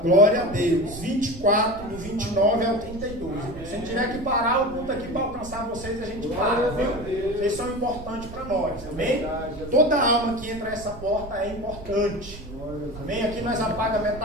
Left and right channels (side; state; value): right; noise; rumble, 14 dB below the sound